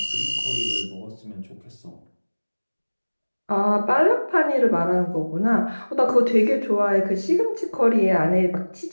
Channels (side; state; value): both; inverted; correlation -1.00